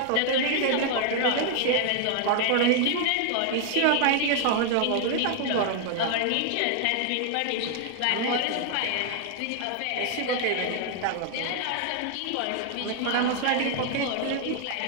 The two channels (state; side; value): different; both; correlation 0.00